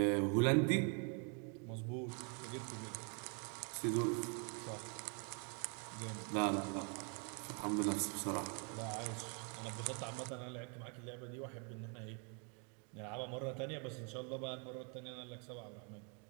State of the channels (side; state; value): left; quieter; 37.5 dB